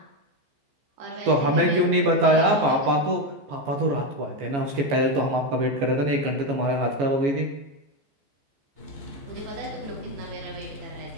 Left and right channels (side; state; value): left; late; 14 ms